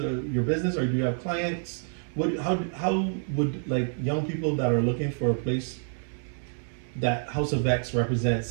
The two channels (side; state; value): left; silent; 59 dB below the other